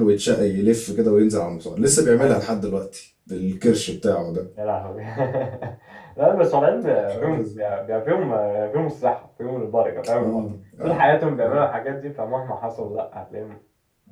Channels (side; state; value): both; identical; correlation 1.00